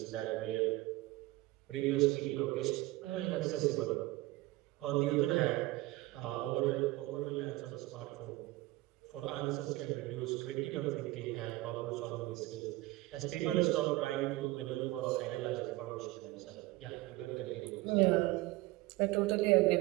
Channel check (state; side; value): quieter; left; 19.4 dB